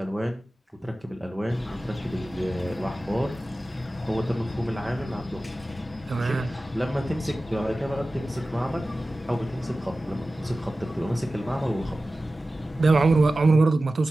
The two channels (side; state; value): both; normal; correlation 0.96